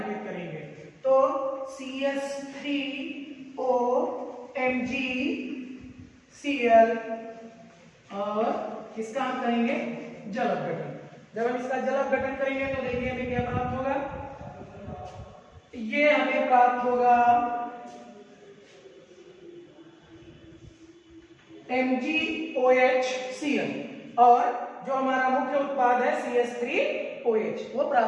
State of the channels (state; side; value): identical; both; correlation 1.00